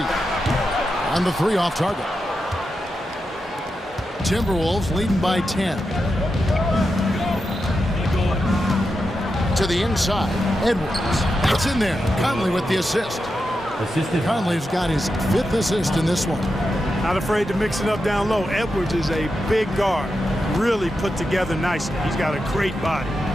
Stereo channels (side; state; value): both; normal; correlation 0.88